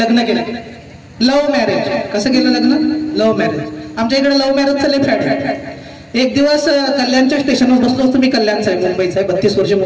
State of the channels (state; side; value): identical; both; correlation 1.00